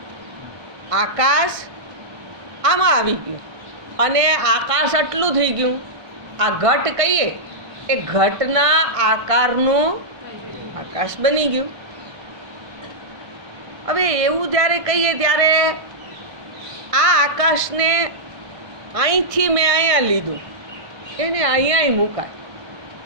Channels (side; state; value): left; late; 1.5 ms